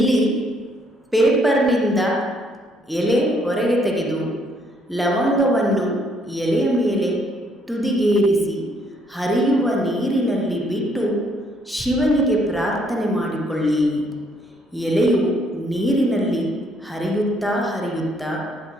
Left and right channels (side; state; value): both; normal; correlation 0.69